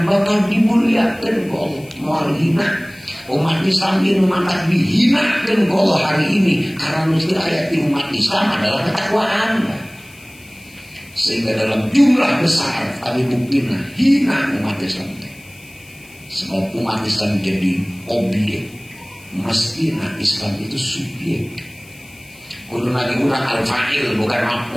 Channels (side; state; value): left; noise; hiss, 24 dB below the sound